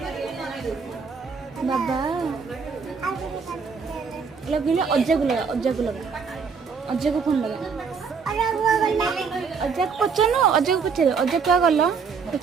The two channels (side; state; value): left; quieter; 5.7 dB